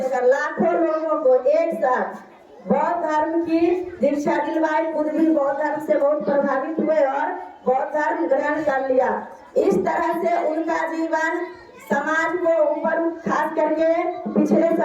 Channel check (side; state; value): both; identical; correlation 1.00